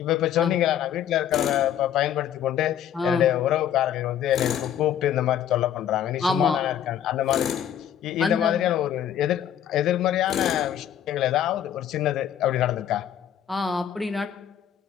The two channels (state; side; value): quieter; right; 9.9 dB